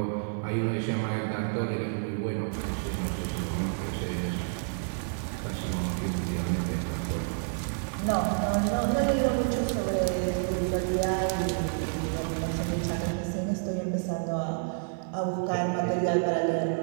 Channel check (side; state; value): left; silent; 58 dB below the other